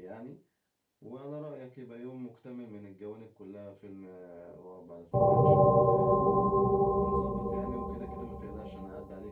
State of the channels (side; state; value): both; identical; correlation 1.00